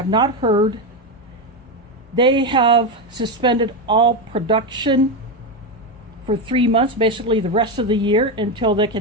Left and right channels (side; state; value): both; normal; correlation 0.11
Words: not heard, they have suspended all production for 3 months, basically the rest of the year, until they